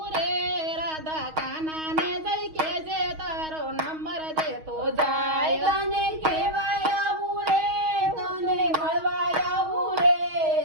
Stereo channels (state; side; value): late; left; 6.3 ms